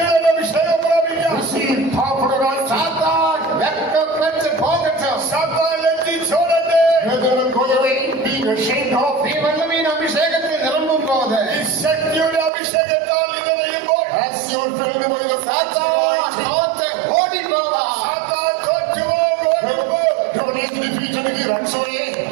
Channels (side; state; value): left; drops out; at 12.5 s